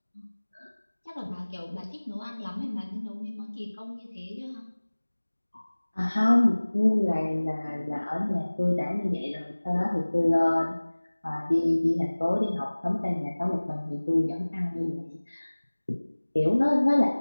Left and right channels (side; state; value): both; inverted; correlation -1.00